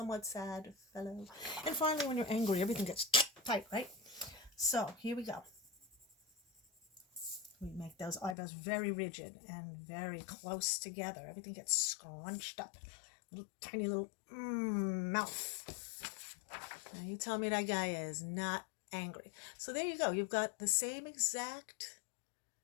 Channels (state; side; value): drops out; right; at 8.3 s